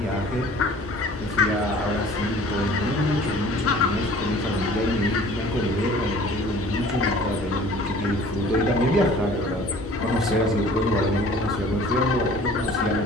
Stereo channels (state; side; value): normal; both; correlation 0.48